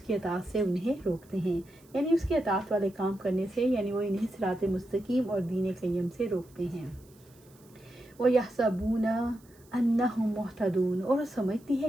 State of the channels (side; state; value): right; noise; hiss, 29 dB below the sound